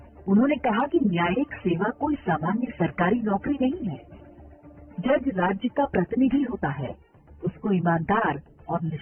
उन्होंने कहा कि न्यायिक सेवा कोई सामान्य सरकारी नौकरी नहीं है। जज राज्य का प्रतिनिधि होता है, उसको ईमानदार और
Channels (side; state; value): both; identical; correlation 1.00